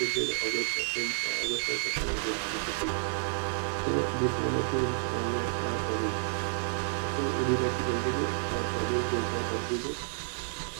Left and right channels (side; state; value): left; silent; digital silence